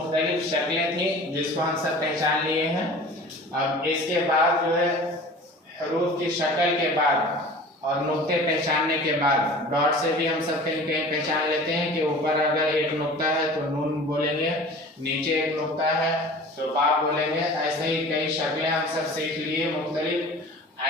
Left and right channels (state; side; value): normal; both; correlation 0.41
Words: शक्लें थी जिसको हम सब पहचान लिए हैं। अब इसके बाद जो है हरूफ की शक्ल के बाद और नुक्ते पहचानने के बाद, डॉट से भी हम सब कहीं कहीं पहचान लेते हैं कि ऊपर अगर एक नुक्ता है तो नून बोलेंगे, नीचे एक नुक्ता है तो बा बोलेंगे। ऐसे ही कई शक्लें हम सब सीख लिए मुख्तलिफ,